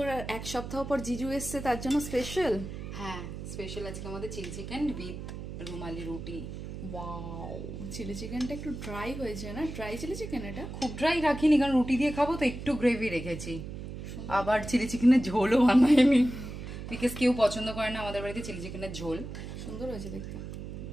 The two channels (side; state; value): right; noise; hum, 8 dB below the sound